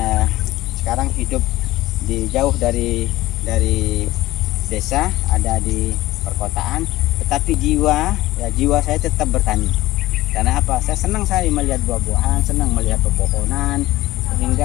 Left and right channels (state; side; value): quieter; right; 16.8 dB